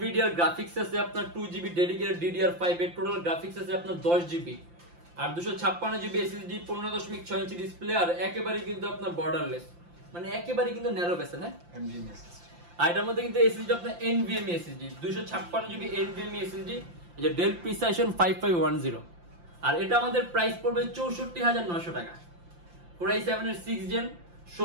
গ্রাফিক্স আছে আপনার 2GB ডেডিকেটেড DDR5 এর, টোটাল গ্রাফিক্স আছে আপনার 10GB, আর 256GB SSD, 15.6 ইঞ্চি ডিসপ্লে, আর একেবারে কিন্তু আপনার বর্ডারলেস, মানে একেবারে কিন্তু ন্যারো বেসে না NVMe SSD। আর এটার মধ্যে কিন্তু SSD আপনার NVMe SSD, 256GB NVMe SSD, এই যে ডেল প্রিসাইশন 5510। আর এটা আমাদের প্রাইস পড়বে 64,900 টাকা। Core i7 এর 6th gen,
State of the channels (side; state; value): left; late; 5.8 ms